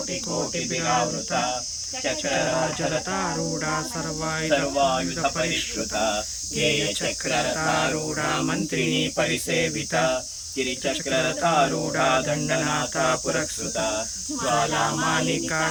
चक्रराजरथारूढा सर्वायुधपरिष्कृता गेयचक्ररथारूढा मन्त्रिणी परिसेविता गिरिचक्ररथारूढा दण्डनाथा पुरस्कृता ज्वालामालिका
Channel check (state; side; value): identical; both; correlation 1.00